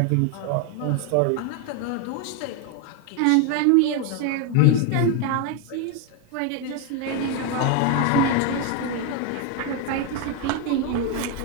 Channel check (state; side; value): different; both; correlation 0.01